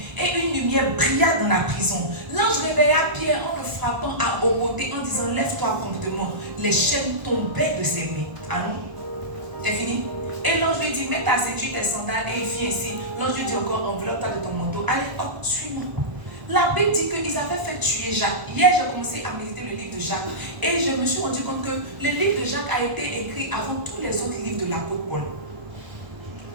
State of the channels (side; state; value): left; late; 1.0 ms